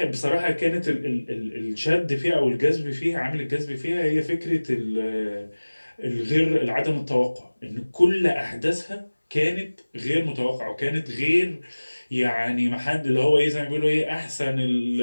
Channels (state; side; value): inverted; both; correlation -1.00